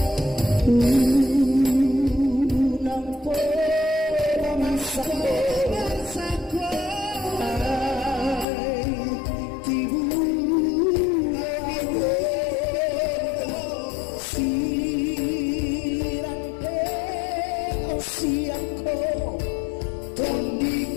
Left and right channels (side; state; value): right; drops out; at 8.5 s